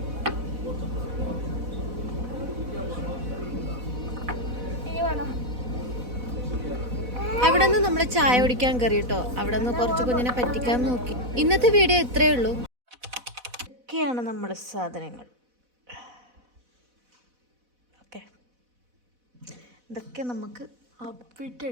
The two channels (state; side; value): late; left; 4.1 ms